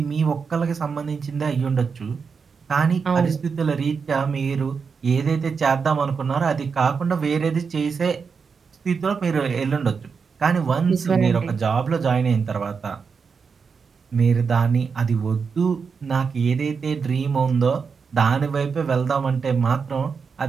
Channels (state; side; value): quieter; left; 5.6 dB